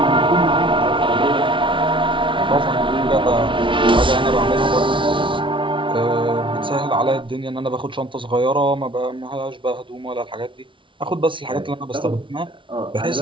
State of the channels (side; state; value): left; late; 0.25 ms